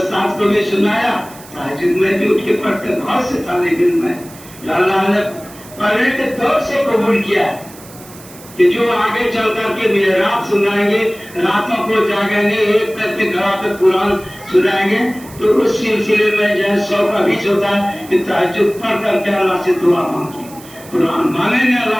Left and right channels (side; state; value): right; noise; hiss, 20 dB below the sound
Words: کو بھی سنایا، تہجد میں بھی اٹھ کے پڑھتے. بہت سے طالب علم میں اللہ نے پہلے کے دور سے قبول کیا ہے کہ جو آگے چل کر کے محراب سنائیں گے، راتوں کو جاگیں گے، ایک کر کے گھر پہ قرآن سنائیں گے. تو اس سلسلے میں جو 100 کا بیچ ہوتا ہے کہ تہجد پڑھ کر کے اللہ سے دعا مانگی، قرآن مانگیں گے